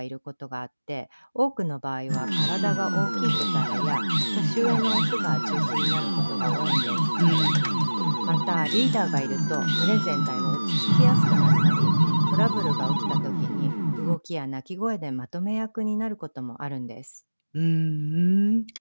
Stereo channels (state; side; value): inverted; both; correlation -1.00